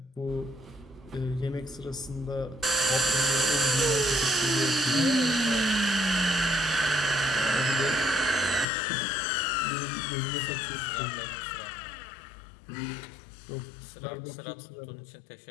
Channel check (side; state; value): right; drops out; at 8.7 s